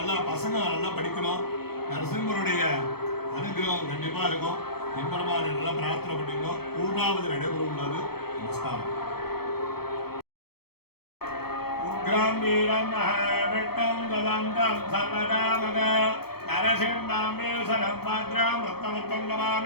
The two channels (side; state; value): right; late; 0.96 ms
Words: பசங்க நல்லா படிக்கணும். நரசிம்மருடைய அனுகிரகம் கண்டிப்பாக இருக்கும். என்பரமாக நல்லா பிரார்த்தனை பண்ணிங்க. பூர்ணாவது நடைபெற உள்ளது. நமஸ்காரம். உக்ரம் வீரம் மகாவிட்டம் கதந்தம் சர்வதாமக நரசிம்மாம்பேசரம் பாத்ராம் ரத்னமுத்தம்